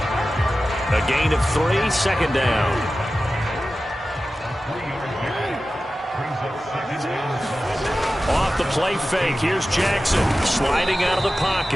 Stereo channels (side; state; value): both; normal; correlation 0.94